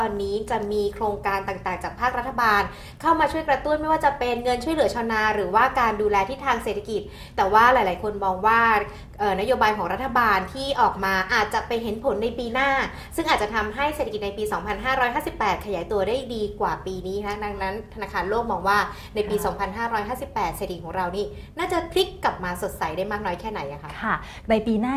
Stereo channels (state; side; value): identical; both; correlation 1.00